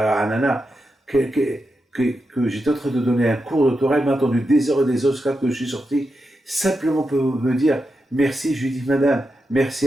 Nana, que j'étais en train de donner un cours de Torah, elle m'a entendu des heures et des heures jusqu'à que je suis sorti, simplement pour me dire merci. Je lui dis, madame,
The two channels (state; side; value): normal; both; correlation 0.88